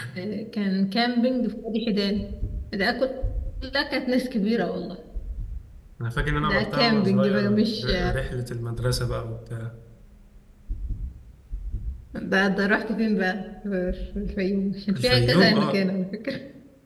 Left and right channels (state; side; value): identical; both; correlation 1.00